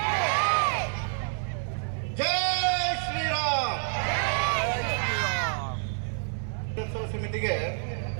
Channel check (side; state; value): left; silent; digital silence